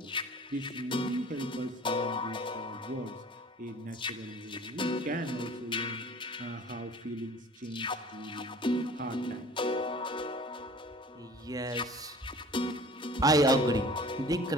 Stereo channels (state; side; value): normal; both; correlation 0.46